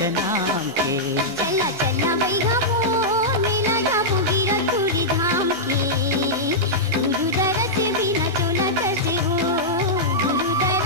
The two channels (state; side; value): normal; both; correlation -0.10